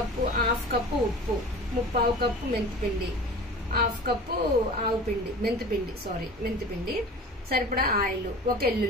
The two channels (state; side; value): normal; both; correlation 0.38